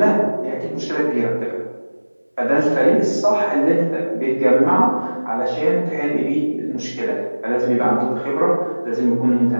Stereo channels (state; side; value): inverted; both; correlation -1.00